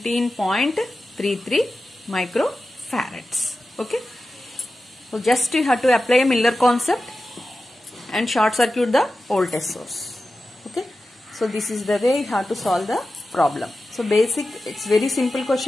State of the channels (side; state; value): both; normal; correlation 0.93